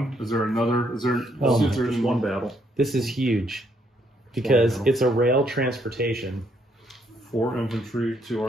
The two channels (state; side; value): normal; both; correlation 0.72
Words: Is there another? Is there? Oh, is there just one battle. This is huge because Wow. it's a rail transportation. 4 infantry, 2